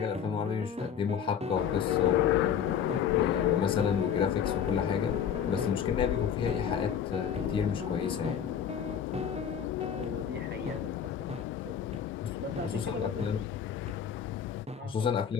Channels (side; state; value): right; quieter; 8.1 dB